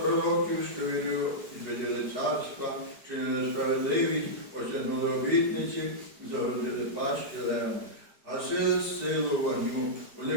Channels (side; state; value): left; late; 4.9 ms